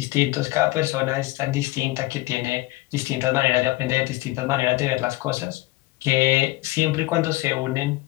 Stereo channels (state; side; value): quieter; right; 19.5 dB